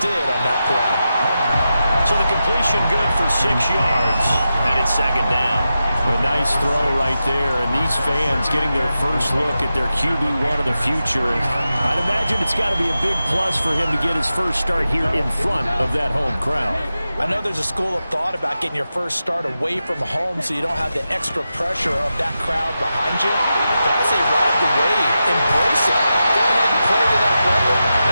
did on that play. So the completion good for 6 yards, and it's second down. A nice throw right there, and these fans getting their first look at their QB1 of the future. And I'd imagine it's got to be a big plus for him to get his first start here in front of that home crowd. I know there's a school of thought about getting your first start away from home so you don't have the extra pressure of that crowd behind you. But I say ride the wave, embrace it. Go ahead and play to that level, and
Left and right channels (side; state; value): both; inverted; correlation -0.91